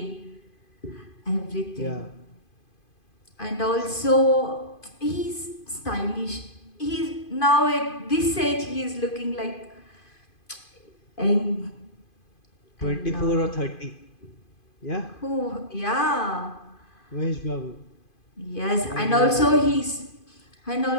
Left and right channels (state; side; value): late; right; 2.5 ms